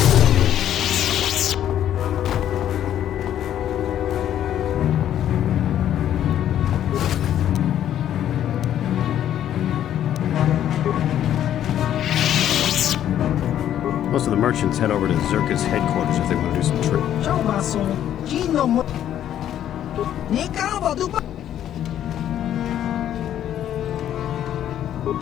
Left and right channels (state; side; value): quieter; right; 10.9 dB